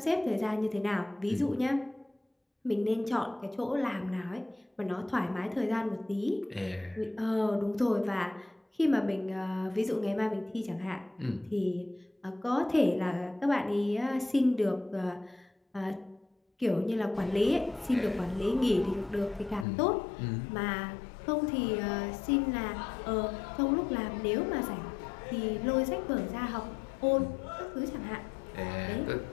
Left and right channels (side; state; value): right; drops out; at 19.7 s